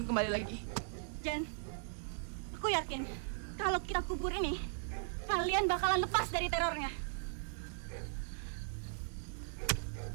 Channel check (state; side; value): silent; left; digital silence